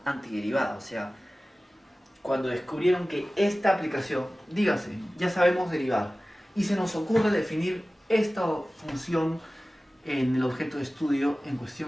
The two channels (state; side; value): normal; both; correlation 0.97